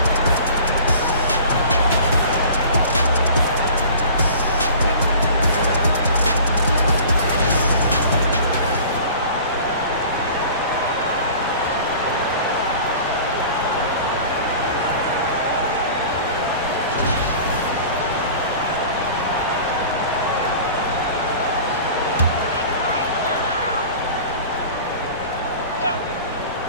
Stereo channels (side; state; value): both; inverted; correlation -0.42